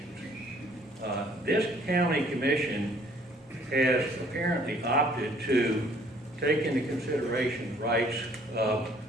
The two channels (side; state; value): both; normal; correlation 0.59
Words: This county commission has apparently opted to take into consideration the rights of